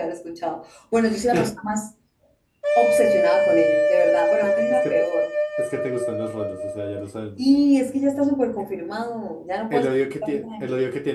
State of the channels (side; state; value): both; identical; correlation 1.00